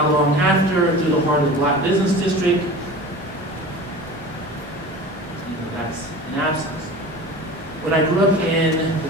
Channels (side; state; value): both; normal; correlation 0.36